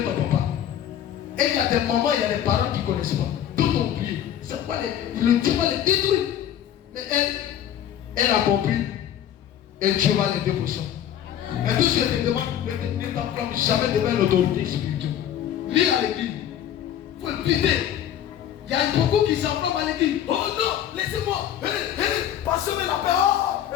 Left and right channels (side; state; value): right; quieter; 10.5 dB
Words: ton papa. Et il y a des moments, il y a des parents qui ne connaissent pas. Tout ont oublié. C'est pas le Dieu va les détruire. Mais elle a compris. Et Dieu va l'aider pour ça. Mais tout ce que je te demande, ne t'enflamme jamais devant l'autorité spirituelle. Lis à l'église. Il faut le quitter. Il y a beaucoup qui s'enflamment à l'église. Oh non, laissez-moi. Passez-moi la paix. Oh,